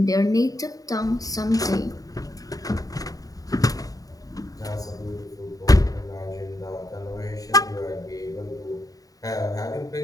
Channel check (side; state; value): right; late; 0.18 ms